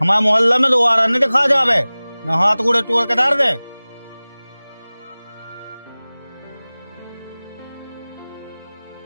हमारे मोहल्ला में दोबारा नहीं दिखा जावे, न हाथ गोड़े तोड़ के डाल दे।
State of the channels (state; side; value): inverted; both; correlation -0.99